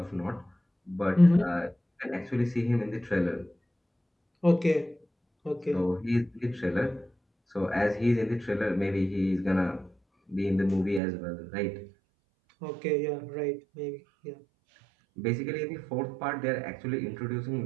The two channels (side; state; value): left; drops out; at 11.0 s